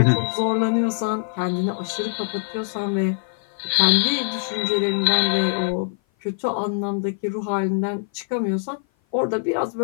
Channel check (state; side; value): silent; right; 56 dB below the other